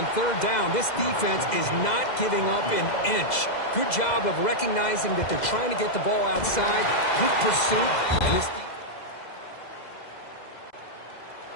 third down? This defense is not giving up an inch. Good job of recognizing that they're trying to get the ball outside. Good pursuit. And this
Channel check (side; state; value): right; late; 2.0 ms